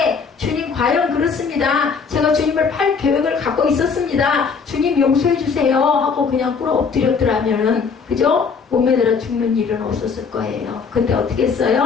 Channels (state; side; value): quieter; right; 5.6 dB